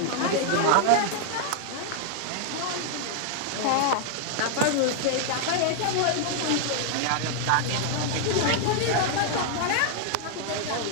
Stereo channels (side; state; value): both; different; correlation 0.00